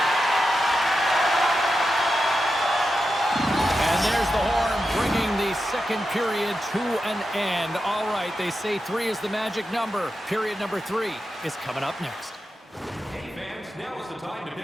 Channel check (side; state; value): both; normal; correlation 0.89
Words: second period to an end. All right, they say 3 is the magic number. Period number 3 is coming up next. Hey fans, now is the time to